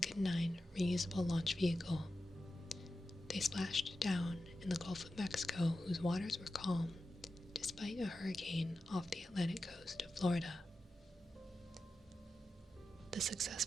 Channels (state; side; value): normal; both; correlation 0.91